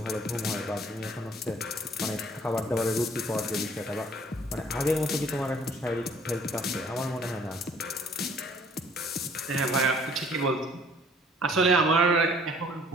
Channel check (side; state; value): both; normal; correlation 0.57